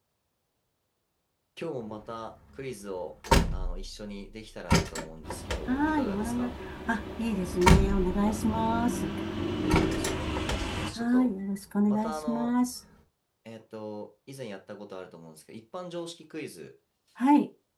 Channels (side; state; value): both; identical; correlation 1.00